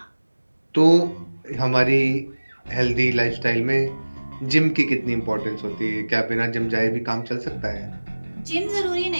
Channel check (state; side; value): inverted; both; correlation -1.00